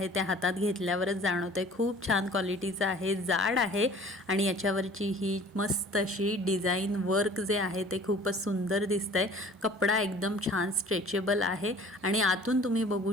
ते हातात घेतल्यावरच जाणवतंय खूप छान क्वालिटीचं आहे, जाड आहे आणि याच्यावरची ही मस्त अशी डिझाईन वर्क जे आहे ते खूपच सुंदर दिसतंय। कपडा एकदम छान स्ट्रेचेबल आहे आणि आतून तुम्ही बघू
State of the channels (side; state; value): both; normal; correlation 0.49